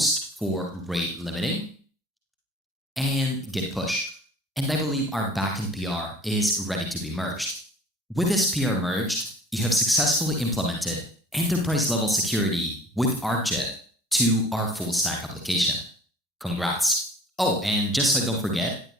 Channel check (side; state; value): both; normal; correlation 0.47